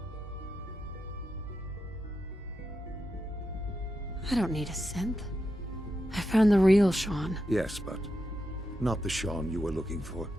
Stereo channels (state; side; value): normal; both; correlation 0.87